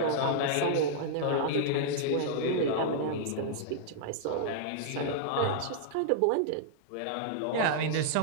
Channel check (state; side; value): different; both; correlation -0.02